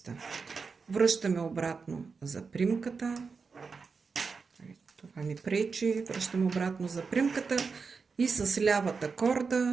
Връщаме обратно за примката. Това ми пречи. Връщаме обратно за примката и с лявата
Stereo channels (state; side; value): quieter; left; 5.0 dB